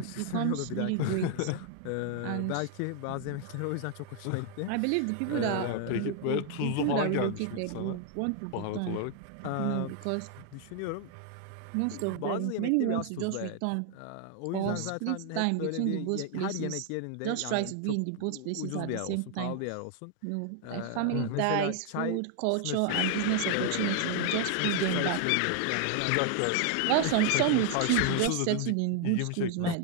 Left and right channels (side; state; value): both; different; correlation 0.00